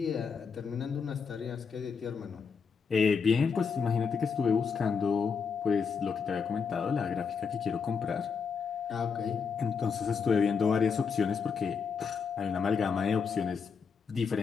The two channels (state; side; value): quieter; right; 5.9 dB